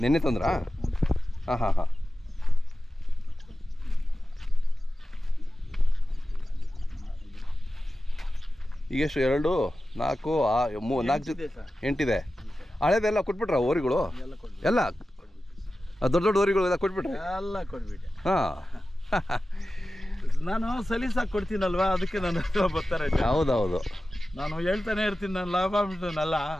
ನೆನ್ನೆ ತಂದ್ರಾ? ಹಾಂ ಹಾಂ ಹಾಂ. ಈಗ ಎಷ್ಟು? 2, 4, 4 8 ಹಳೇದೆಲ್ಲ ಕೊಟ್ಬಿಟ್ರ ಓರಿಗಳು ಎಲ್ಲ? ದೊಡ್ಡ ದೊಡ್ಡ ಓರಿಗಳು ಎಲ್ಲ ಕೊಟ್ಬಿಟ್ರೆ? ಎಲ್ಲ ಕೊಟ್ಬಿಟ್ಟೆ. ಹಾಂ. ನಾನು ಸಲೀಸಾಗಿ ಕೊಡ್ತೀನಲ್ವಾ, ಅದಕ್ಕೆ ನನ್ನ ಬರ್ತಾರೆ. ಹೌದೌದು, ನಾನು ಹೇಳ್ತಾನೆ ಇರ್ತೀನಿ, ನಾನು ಲಾಭ ಬಿಟ್ಟನಲ್ಲ.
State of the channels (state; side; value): normal; both; correlation 0.94